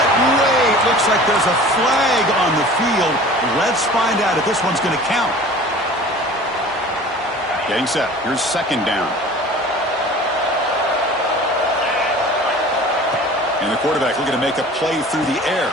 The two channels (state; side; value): normal; both; correlation 0.43